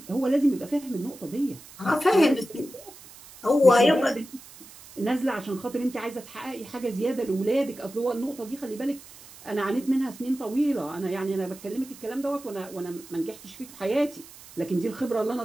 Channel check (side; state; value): right; noise; hiss, 19 dB below the sound